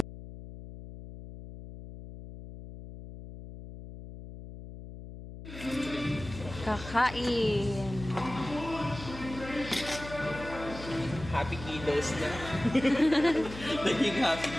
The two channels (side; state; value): left; noise; hum, 13 dB below the sound